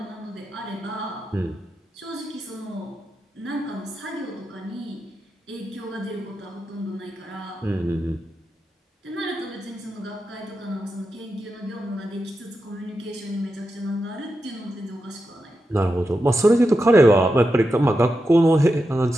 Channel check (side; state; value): both; normal; correlation 0.88